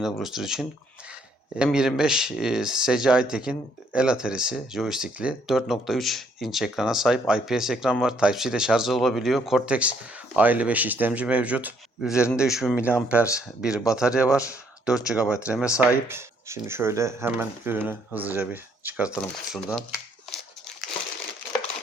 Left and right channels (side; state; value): both; normal; correlation 0.68